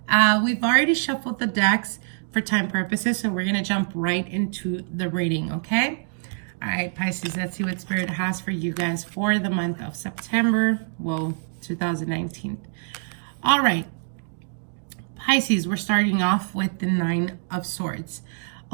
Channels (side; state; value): left; silent; digital silence